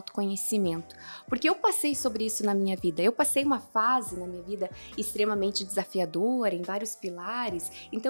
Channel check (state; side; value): inverted; both; correlation -1.00